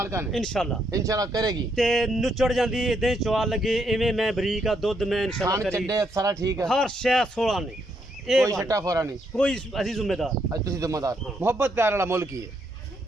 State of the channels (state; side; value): normal; both; correlation 0.76